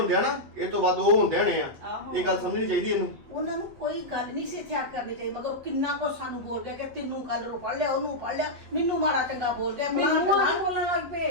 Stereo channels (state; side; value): late; left; 8.1 ms